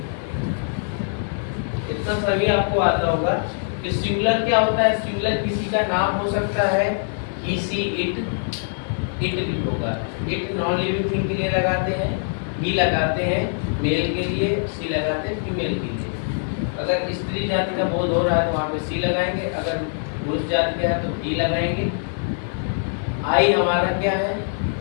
इतना सभी आपको आता होगा कि सिंगुलर क्या होता है। सिंगुलर किसी का नाम हो सकता है, ही, सी, इट भी होगा। इट नॉन लिविंग थिंग के लिए लगाते हैं, ही लगाते हैं मेल के लिए, सी लगाते हैं फीमेल के लिए। अगर स्त्री जाति का बोध हो रहा है तो वहाँ पे सी लगाएंगे, अगर पुरुष जाति का है तो ही लगाएंगे। आई हमारा क्या है?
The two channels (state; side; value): silent; right; digital silence